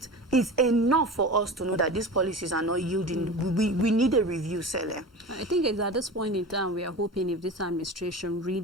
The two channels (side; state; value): both; normal; correlation 0.32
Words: enough for us to know that these policies are not yielding. We need a review, Celia. I think it's at this point in time we are hoping if this administration